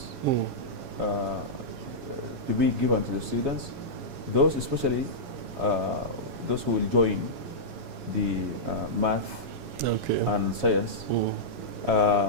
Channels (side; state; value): left; late; 7.2 ms